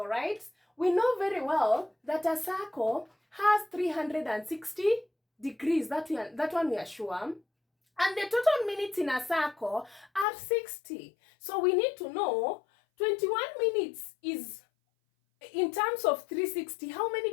right? We know very well that a circle has 360 degrees. That one we are sure. And the total minutes in a circle are 60. So we need to know 21 minutes is, in terms of 360, how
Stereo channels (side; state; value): right; drops out; at 10.2 s